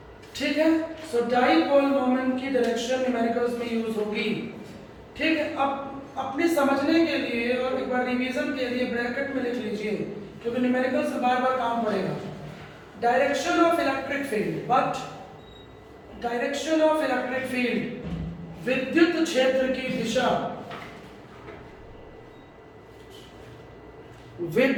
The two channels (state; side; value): identical; both; correlation 1.00